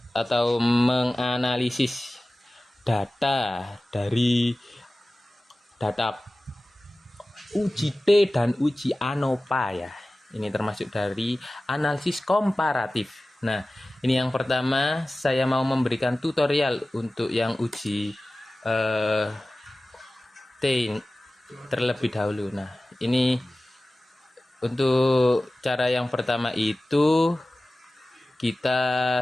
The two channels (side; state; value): both; normal; correlation 0.97